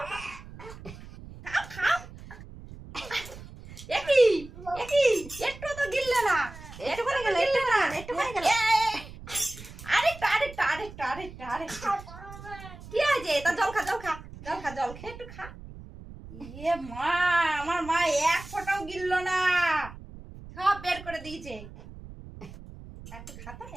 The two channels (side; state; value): right; noise; rumble, 15 dB below the sound